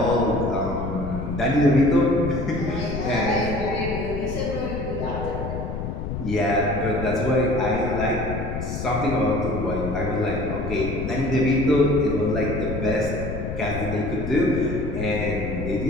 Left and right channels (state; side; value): noise; left; rumble, 5 dB below the sound